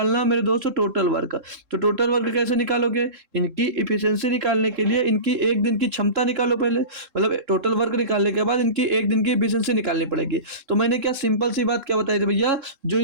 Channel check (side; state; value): left; late; 3.7 ms